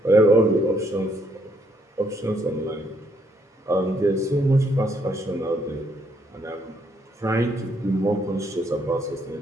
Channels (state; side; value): normal; both; correlation 0.71